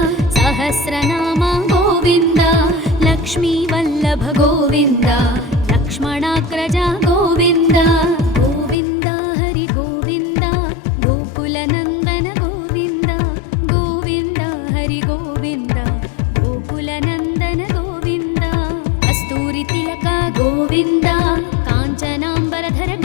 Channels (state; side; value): drops out; right; at 8.8 s